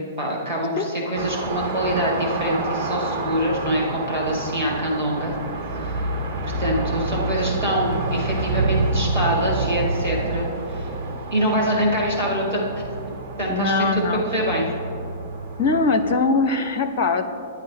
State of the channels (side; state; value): both; inverted; correlation -0.36